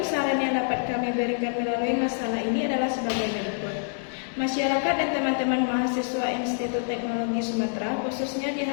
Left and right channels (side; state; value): right; silent; digital silence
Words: saran yang dapat kami berikan melalui masalah ini adalah sebagai berikut. Masyarakat dan teman-teman mahasiswa Institut Teknologi Sumatera khususnya